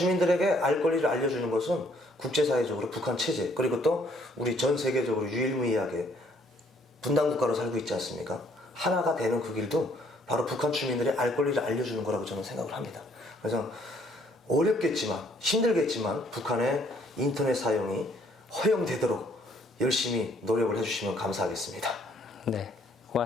알 권리를 알려주는 것은 국제사회적으로 북한 체제 그리고 또 우리 전 세계적으로 유일무이하게 분단국가로 살고 있지 않습니까? 하나가 되는 그 길도 바로 북한 주민들의 알 권리를 알려주는 거라고 저는 생각을 합니다. 그래서 어렵겠지만 힘들겠지만 북한의 인터넷 사용이 허용되도록 열심히 노력을 해주시면 감사하겠습니다. 네,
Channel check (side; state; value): both; normal; correlation 0.64